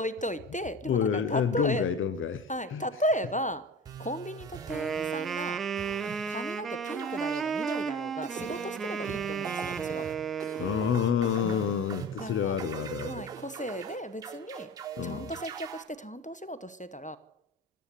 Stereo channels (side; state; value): both; normal; correlation 0.35